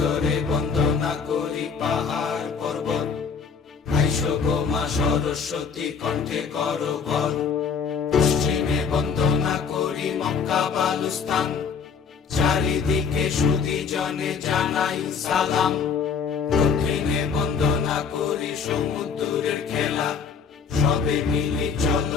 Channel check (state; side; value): quieter; right; 6.1 dB